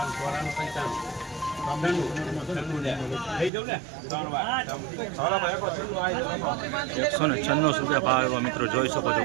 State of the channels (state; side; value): drops out; left; at 3.5 s